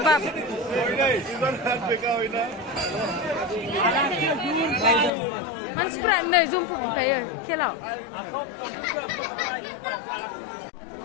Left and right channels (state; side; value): drops out; right; at 5.1 s